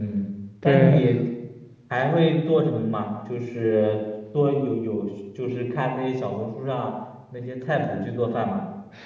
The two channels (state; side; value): identical; both; correlation 1.00